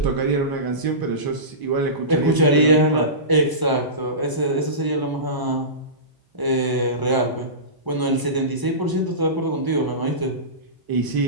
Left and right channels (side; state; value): left; late; 1.0 ms